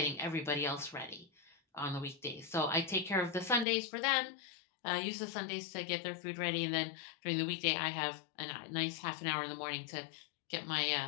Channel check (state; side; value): drops out; right; at 3.7 s